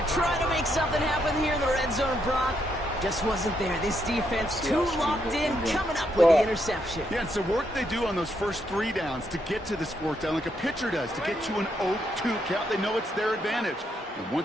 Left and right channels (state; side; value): normal; both; correlation 0.77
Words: try to make something happen here in the red zone, Brock. Just wasn't there. This defense too locked in, coming up with the interception. Yeah, it's the work they do on those first 3 downs to get to this 4th down, like a pitcher does, to get to an 0-2 count. They know it's their advantage. And